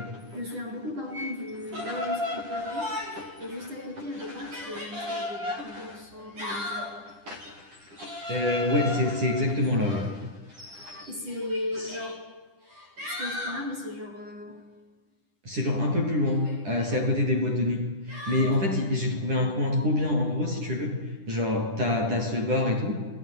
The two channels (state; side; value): late; left; 10 ms